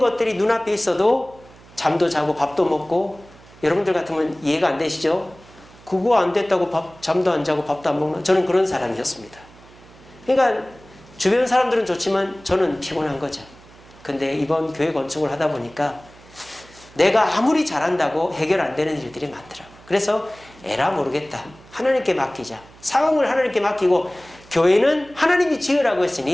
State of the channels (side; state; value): right; noise; hum, 24 dB below the sound